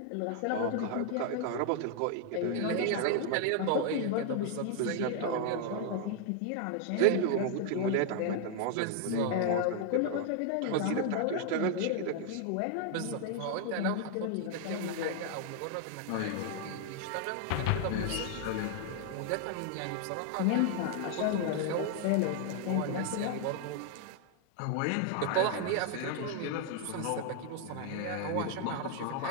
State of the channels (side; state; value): both; different; correlation 0.00